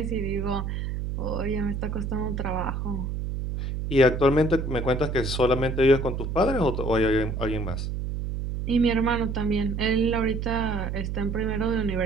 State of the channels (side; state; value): right; noise; hum, 3 dB below the sound